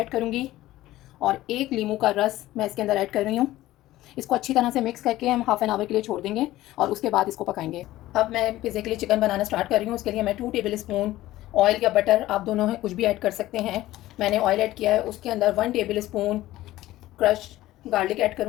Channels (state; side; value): quieter; right; 15.9 dB